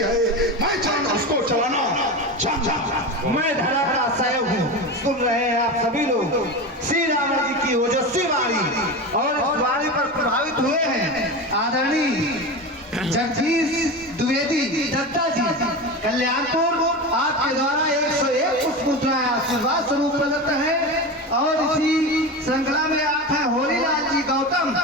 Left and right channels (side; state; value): both; normal; correlation 0.24